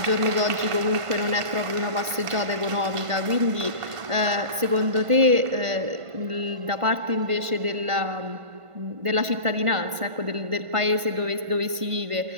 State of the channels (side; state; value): left; late; 1.5 ms